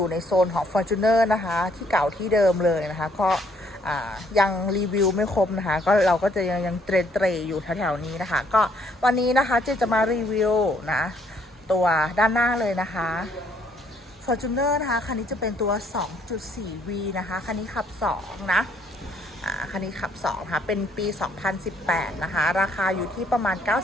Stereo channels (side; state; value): both; normal; correlation 0.67